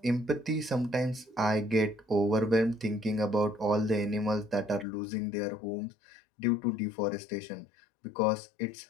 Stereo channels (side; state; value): right; drops out; at 4.9 s